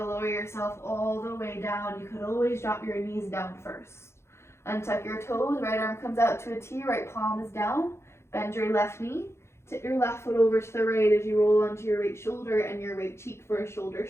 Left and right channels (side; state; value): right; late; 0.13 ms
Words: lower yourself all the way down. You could always drop your knees down first. Untuck your toes, right arm comes out to a T, right palm is down. Bend your left knee, tip your left foot over to the right as you roll onto your right shoulder and your right cheek for a shoulder